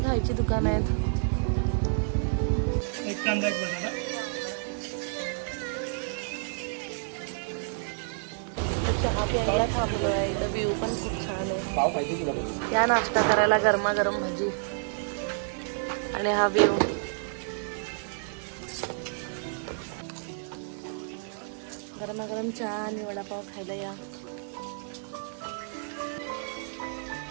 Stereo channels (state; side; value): silent; left; digital silence